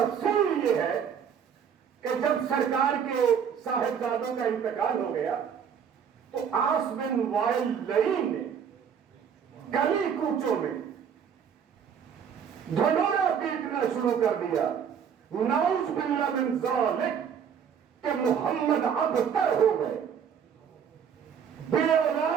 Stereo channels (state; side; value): quieter; left; 7.6 dB